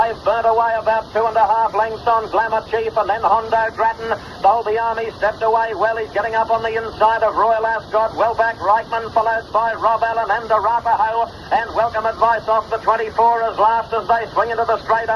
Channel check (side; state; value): both; identical; correlation 1.00